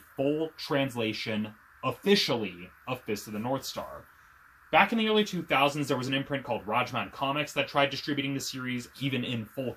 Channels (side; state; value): both; identical; correlation 1.00